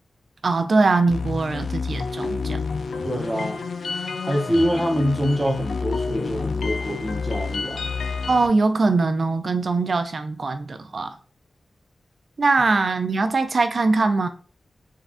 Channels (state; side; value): normal; both; correlation 0.92